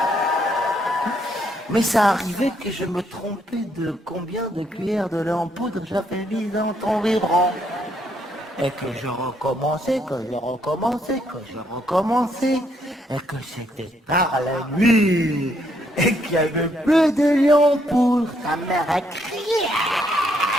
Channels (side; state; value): both; normal; correlation 0.72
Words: Mais ça arrivait que je me trompais de combien de cuillères de lait en poudre j'avais mis dans ton biberon. Et que je recommençais, et que c'était tard la nuit, et qu'il n'y avait plus de lait en poudre. Ta mère a crié.